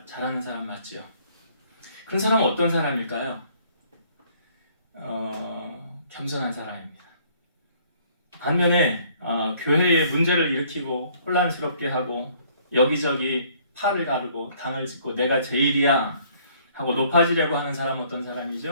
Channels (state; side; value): inverted; both; correlation -0.61